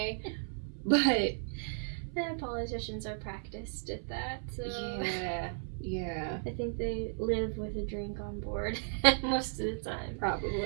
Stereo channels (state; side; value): silent; left; 55 dB below the other